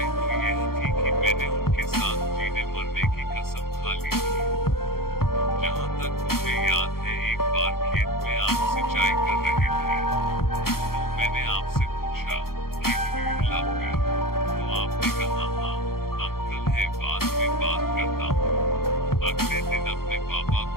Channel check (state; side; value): late; right; 0.93 ms